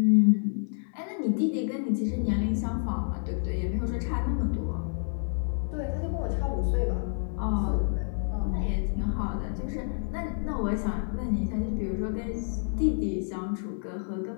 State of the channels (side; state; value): right; silent; 59 dB below the other